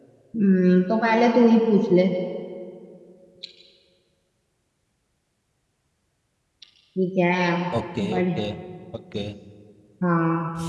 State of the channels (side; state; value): both; identical; correlation 1.00